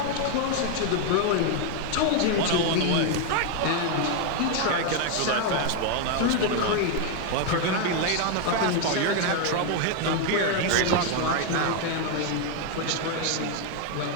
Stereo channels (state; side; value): different; both; correlation 0.01